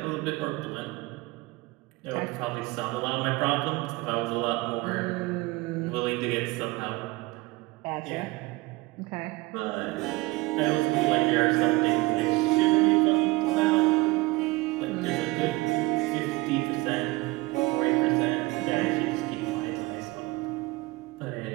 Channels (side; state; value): left; quieter; 22.2 dB